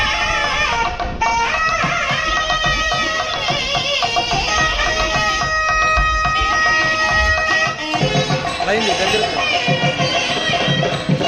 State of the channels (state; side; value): identical; both; correlation 1.00